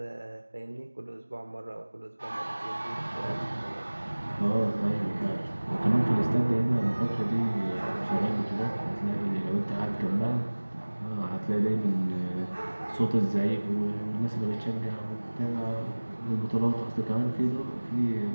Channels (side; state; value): both; inverted; correlation -1.00